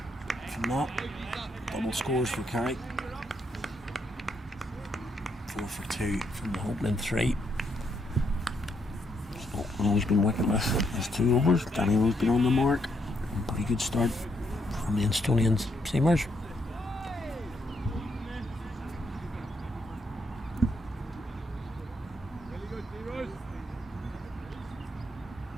From that, double scores for Carrick. 4 for 2 from the opening 3. So Rose's been wicketless. There's 2 overs. Danny Rose been on the mark. Pretty good start from the Instonians seamers.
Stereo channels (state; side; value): normal; both; correlation 0.76